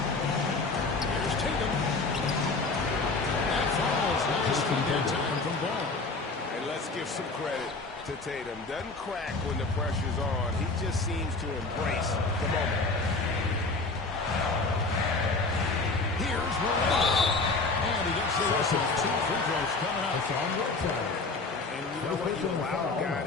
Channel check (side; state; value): right; quieter; 3.7 dB